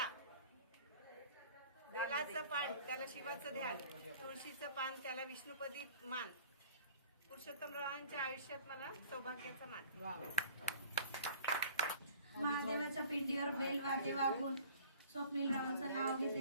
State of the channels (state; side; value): inverted; both; correlation -0.51